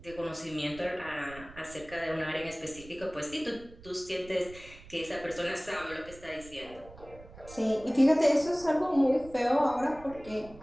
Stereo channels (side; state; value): right; noise; rumble, 19 dB below the sound